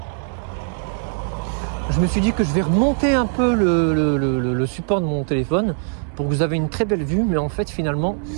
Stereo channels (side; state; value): left; silent; 61 dB below the other